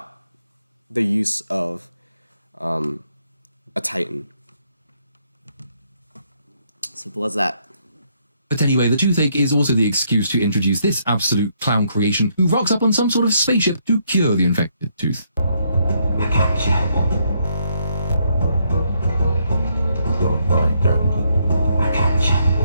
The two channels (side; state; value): both; inverted; correlation -0.73